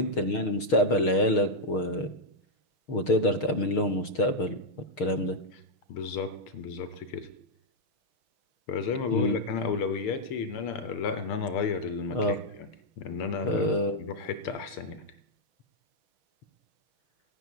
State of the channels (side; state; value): right; late; 6.5 ms